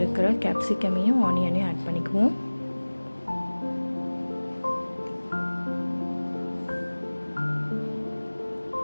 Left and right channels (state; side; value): inverted; both; correlation -1.00